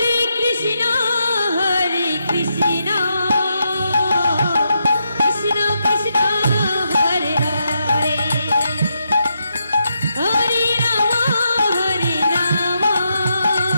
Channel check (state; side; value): inverted; both; correlation -0.82